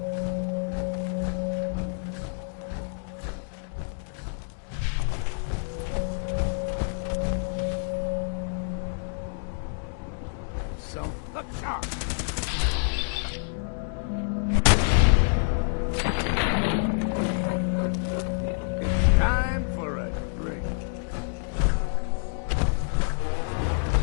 Look sharp! It's time for a drink.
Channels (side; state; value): right; silent; digital silence